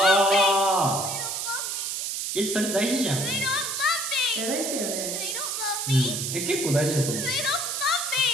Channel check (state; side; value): noise; right; hiss, 2 dB below the sound